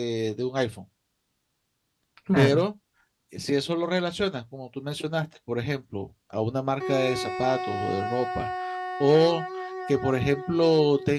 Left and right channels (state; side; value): identical; both; correlation 1.00